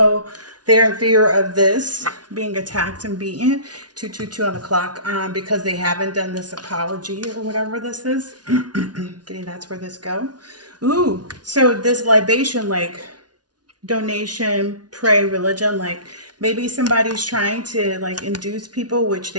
they're in fear of this being attacked and beaten, 222 on the clock, because they haven't done this apology or whatever this is. Getting that's where this go. Ooh, so this libation, like donation, pray, religion, like maybe somebody's trying to like induce people, which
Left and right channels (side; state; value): left; late; 0.69 ms